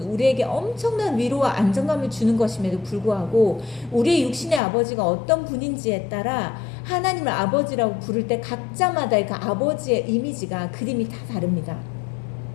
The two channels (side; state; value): right; drops out; at 4.6 s